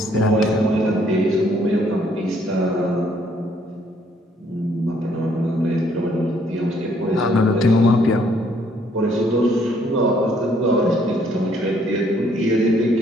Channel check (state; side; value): normal; both; correlation 0.66